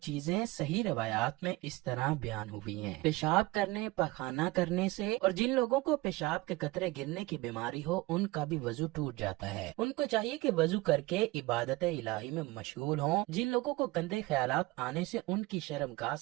چیزیں صحیح روایات میں اس طرح بیان ہوئی ہیں: پیشاب کرنے، پخانہ کرنے سے، اور جن لوگوں کو پیشاب کے قطرے گرنے کی بیماری ہو ان کا بھی وضو ٹوٹ جاتا ہے۔ ان کو چاہیے کہ وضو کر کے عبادت الہی میں مشغول ہوں۔ جن لوگوں کو گندے خیالات آنے سے ان کی شرمگاہ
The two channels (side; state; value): left; quieter; 21.1 dB